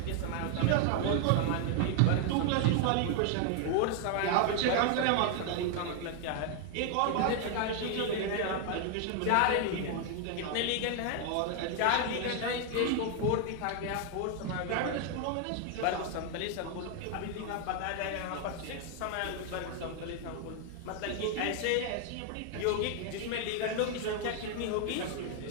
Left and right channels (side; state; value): both; different; correlation 0.00